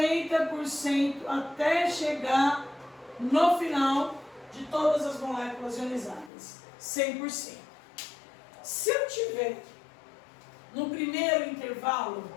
até chegar no final de todas as moléculas ionizadas, 100%. Se eu tiver no primeiro intervalo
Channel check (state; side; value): drops out; right; at 6.3 s